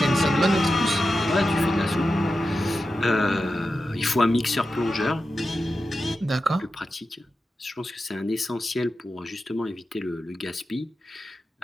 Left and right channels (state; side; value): normal; both; correlation 0.91